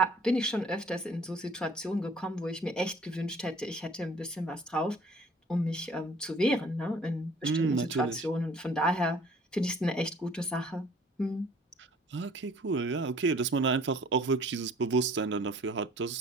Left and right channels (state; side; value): normal; both; correlation 0.54